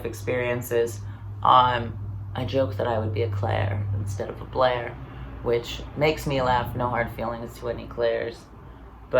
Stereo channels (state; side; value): identical; both; correlation 1.00